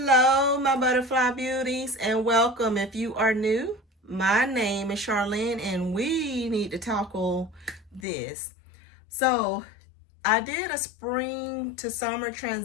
my butterfly beauties, and welcome. If you are new, my name is Charlene, and we need to tackle this. So, I did a spring to summer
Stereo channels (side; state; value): right; drops out; at 8.1 s